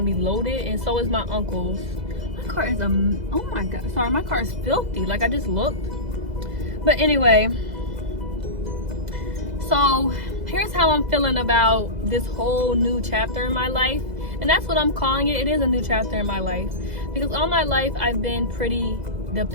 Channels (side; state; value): left; late; 2.0 ms